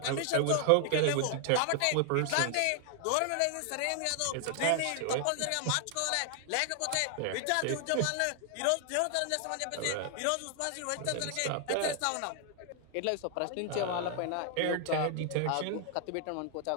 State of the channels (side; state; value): both; different; correlation 0.00